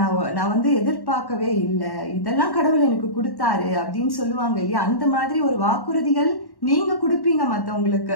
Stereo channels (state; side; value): late; right; 1.1 ms